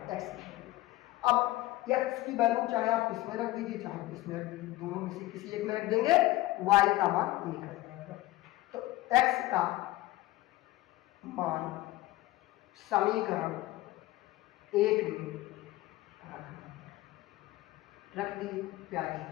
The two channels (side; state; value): right; quieter; 17.5 dB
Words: x। अब x की वैल्यू चाहे आप इसमें रख दीजिए चाहे इसमें रख दीजिए, दोनों में से किसी एक में रख देंगे, y का मान निकल जाएगा। तो x का मान समीकरण 1 में रख दीजिए प्यारे